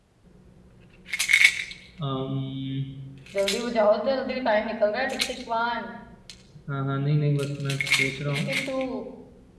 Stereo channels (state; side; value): identical; both; correlation 1.00